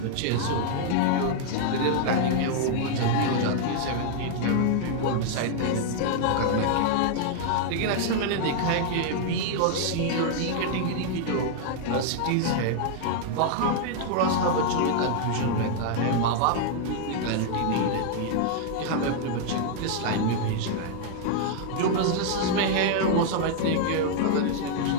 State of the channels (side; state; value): both; different; correlation -0.01